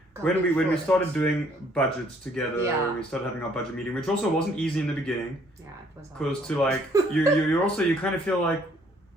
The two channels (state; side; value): normal; both; correlation 0.63